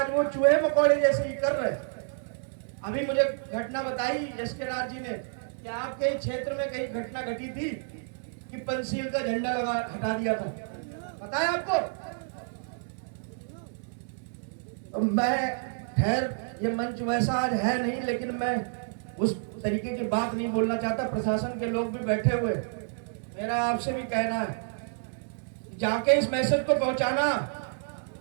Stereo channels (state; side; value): silent; left; digital silence